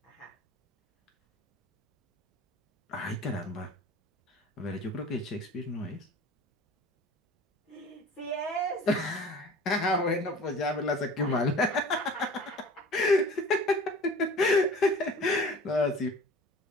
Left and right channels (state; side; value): normal; both; correlation 0.44